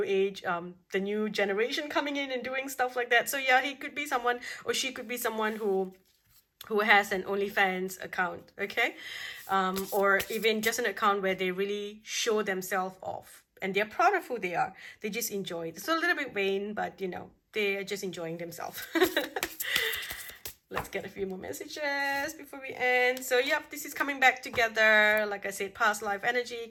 age, the new generation coming in and doing stuff like that. So yeah, he could be someone, or she could be someone who has an OnlyFans account, okay? Or even just an account where they really show themselves off and they're proud of who they are. They just enjoy it. It's a little bit vain, but they are just enjoying themselves. Let's get a few more messages before we end. So yep, this is coming back together. Like I said, past life energy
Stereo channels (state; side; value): identical; both; correlation 1.00